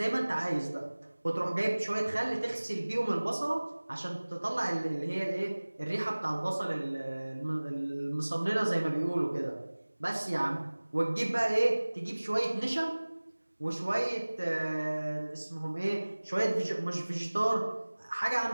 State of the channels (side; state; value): both; inverted; correlation -1.00